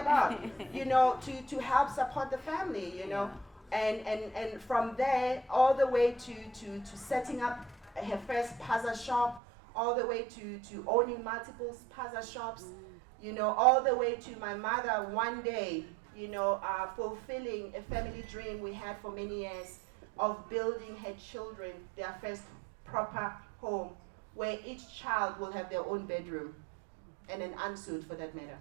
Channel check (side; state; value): left; drops out; at 9.4 s